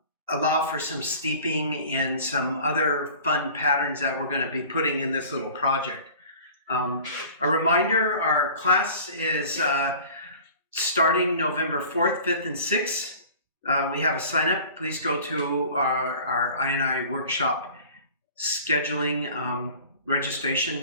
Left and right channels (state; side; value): inverted; both; correlation -0.44